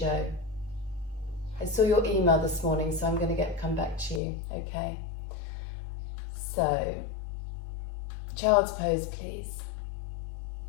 I saw your email this morning, so I'm going to come back to you, okay? So, child's pose, please.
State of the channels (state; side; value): drops out; right; at 4.2 s